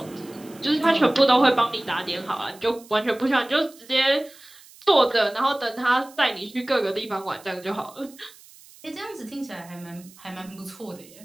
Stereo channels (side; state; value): right; noise; hiss, 23 dB below the sound